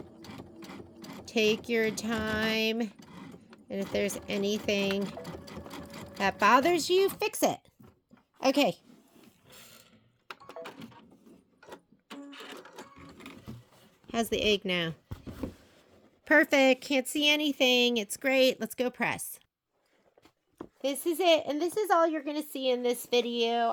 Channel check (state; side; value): identical; both; correlation 1.00